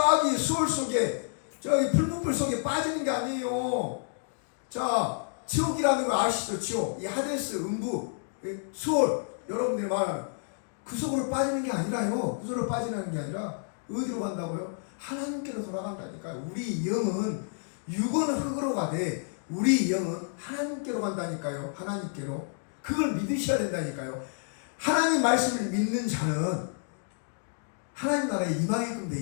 수월 속에, 저기 풀무불 속에 빠지는 게 아니에요. 자, 지옥이라는 거 아시죠? 지옥. 이 하데스, 음부, 수월, 여러분들이 말하는 그 속으로 빠지는 게 아니라요. 그 속으로 빠지는 게 아니라 어디로 간다고요? 하나님께로 돌아간다니까요. 우리 영은 육은 흙으로 가되 우리 영은 하나님께로 간다니까요. 하나님께로. 그걸 믿으셔야 된다니까요. 하나님 말씀을 믿는 자는 하나님 나라에 임하게끔 돼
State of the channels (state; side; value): silent; right; digital silence